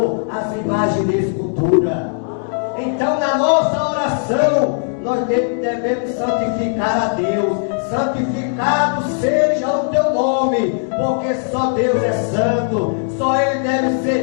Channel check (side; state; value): right; silent; digital silence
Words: às imagens de escultura. Então, na nossa oração, nós devemos santificar a Deus. Santificado seja o teu nome, porque só Deus é santo, só Ele deve